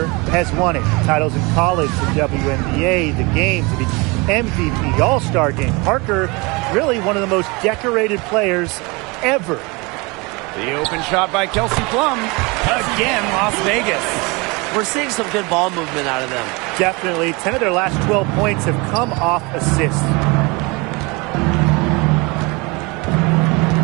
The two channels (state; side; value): quieter; left; 26.7 dB